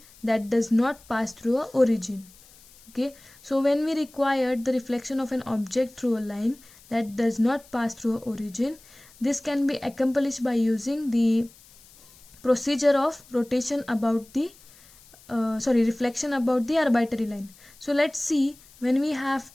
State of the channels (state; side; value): noise; left; hiss, 25 dB below the sound